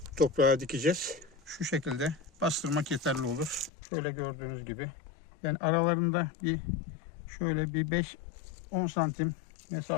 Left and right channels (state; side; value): drops out; right; at 3.7 s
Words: toprağa dikeceğiz. Şu şekilde bastırmak yeterli olur. Şöyle gördüğünüz gibi. Yani aralarında şöyle bir 5-10 santim